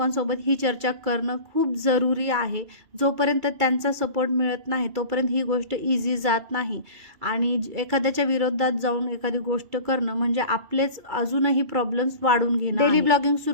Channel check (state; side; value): late; left; 2.3 ms